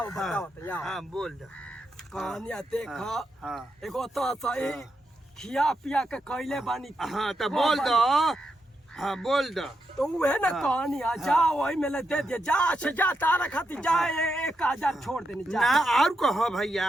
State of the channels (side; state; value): both; normal; correlation 0.84